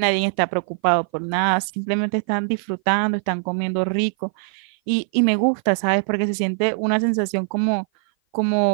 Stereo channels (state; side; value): silent; left; 56 dB below the other